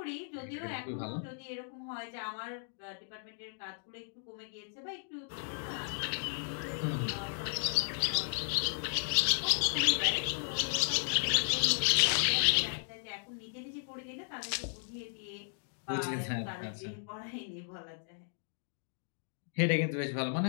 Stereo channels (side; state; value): right; silent; digital silence